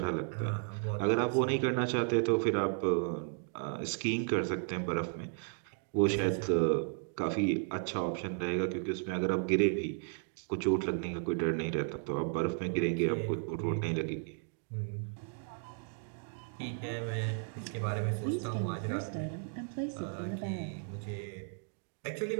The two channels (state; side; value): silent; left; 55 dB below the other